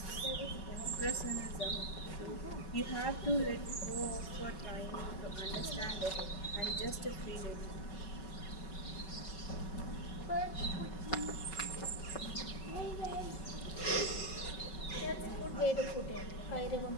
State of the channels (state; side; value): late; right; 5.4 ms